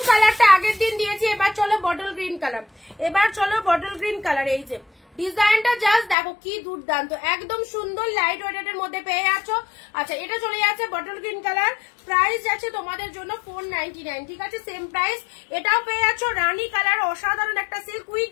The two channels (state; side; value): drops out; right; at 6.2 s